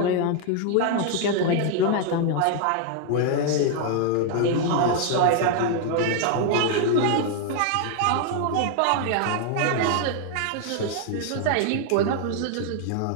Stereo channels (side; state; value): both; different; correlation 0.00